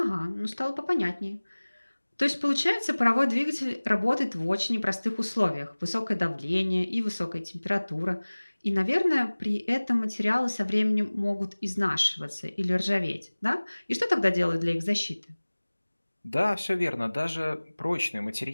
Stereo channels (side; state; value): both; inverted; correlation -1.00